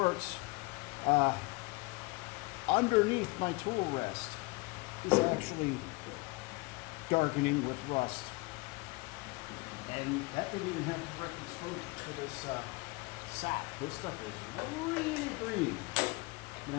underneath my tool rest is actually darkening with rust. And that didn't even have direct exposure to this sap. This stuff is really green. I'm gonna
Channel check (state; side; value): quieter; right; 25.5 dB